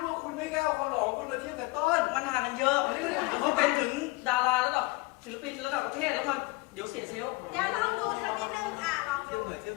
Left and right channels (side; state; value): right; quieter; 23.2 dB